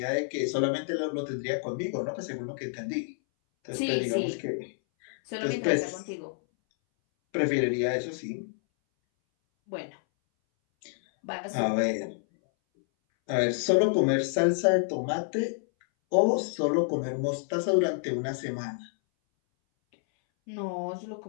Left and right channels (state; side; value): silent; right; 59 dB below the other